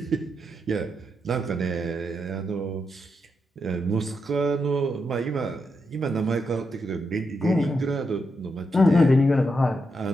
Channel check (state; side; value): normal; both; correlation 0.83